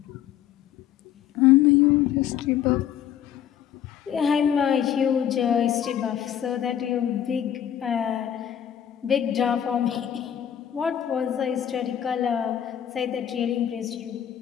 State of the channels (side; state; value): right; quieter; 10.0 dB